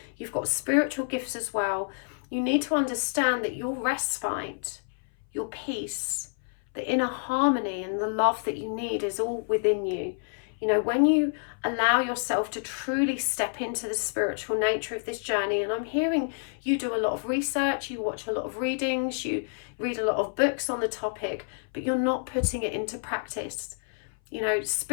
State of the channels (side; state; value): right; silent; 58 dB below the other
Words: You've got spiritual gifts as well. You need to understand that your respite, your peace, the inner harmony and the love that you need is all within you. You know, when you allow yourself to truly step into the spiritual nature of this journey, and I'm hearing you do a lot of research, you watch a lot of readings, you read a lot of books on the topic, but you're not putting it into practice. You know,